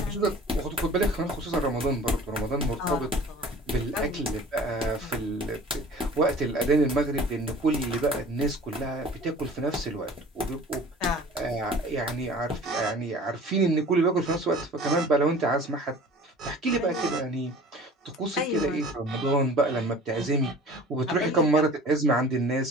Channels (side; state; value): both; normal; correlation 0.44